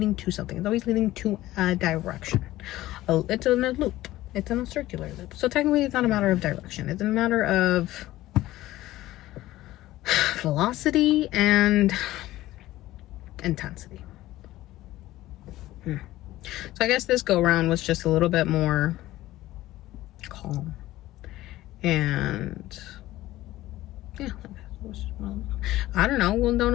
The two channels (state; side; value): quieter; right; 16.0 dB